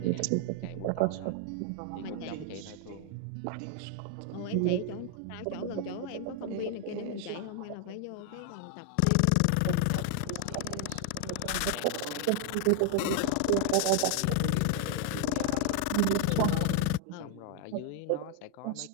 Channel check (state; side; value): different; both; correlation 0.00